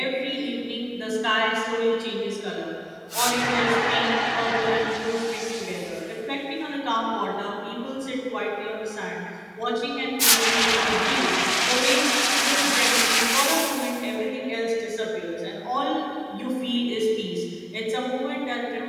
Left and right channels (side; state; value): both; identical; correlation 1.00